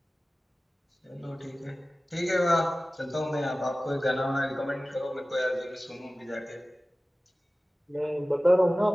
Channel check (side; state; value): both; normal; correlation 0.97